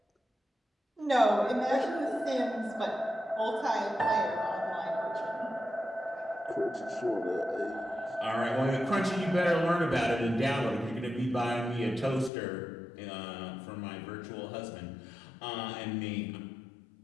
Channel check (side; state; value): right; drops out; at 12.3 s